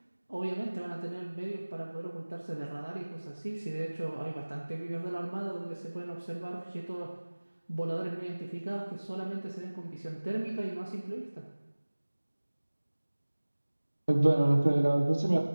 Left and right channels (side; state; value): both; inverted; correlation -1.00